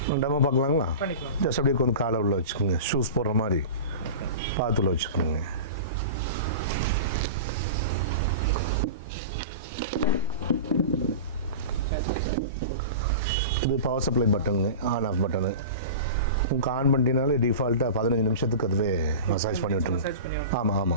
டெமோ பார்க்கலாங்களா? ஜஸ்ட் அப்படியே கொஞ்சம் காலை உள்ள வச்சுக்கோங்க. ஷூஸ் போடுற மாதிரி பார்த்து உள்ள வச்சுக்கோங்க. இது பவர் சப்ளை பட்டனுங்க, ஆன் ஆஃப் பட்டனு. உங்களுக்கு ஆன் பண்ணிட்டீங்கனாலே டிஃபால்ட்டாக 15 நிமிஷத்துக்கு அதுவே மசாஜ் பண்ணி விட்டுருங்க. ஆமாம்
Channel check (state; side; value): inverted; both; correlation -0.31